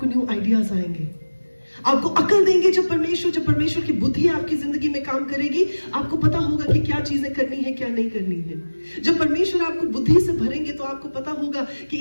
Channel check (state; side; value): inverted; both; correlation -1.00